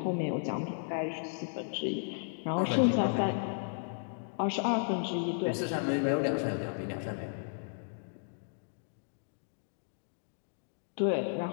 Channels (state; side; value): silent; right; digital silence